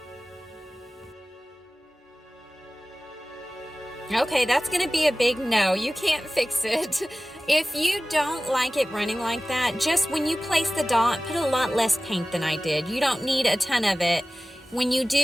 Okay, that's gonna be a big no. You can't fix it. If you don't like it running like that, just when you place the dot, put a lot less paint than I did. You don't need a ton of it. When you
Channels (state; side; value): normal; both; correlation 0.97